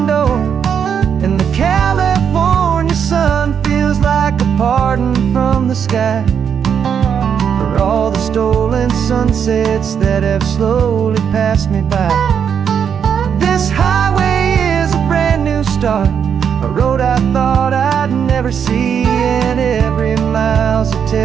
door. And the California sun feels like a pardon from the sky for for all the stolen sunsets that have slowly passed me by. This highway is a brand new start, a road I thought I'd never see, and every mile's a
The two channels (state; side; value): quieter; left; 7.6 dB